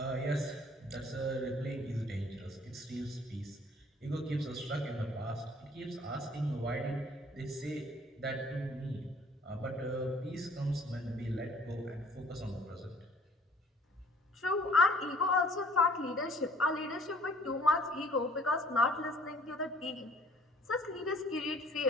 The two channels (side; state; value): both; normal; correlation 0.56